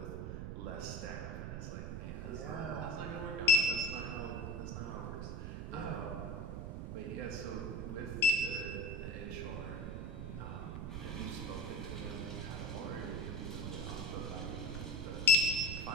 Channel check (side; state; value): right; noise; rumble, 5 dB below the sound